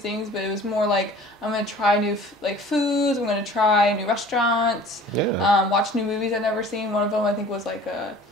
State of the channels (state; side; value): normal; both; correlation 0.47